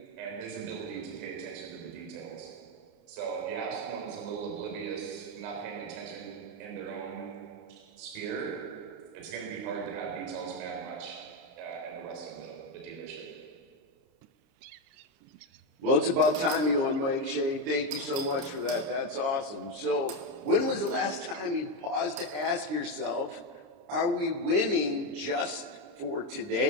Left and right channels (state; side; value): late; left; 29 ms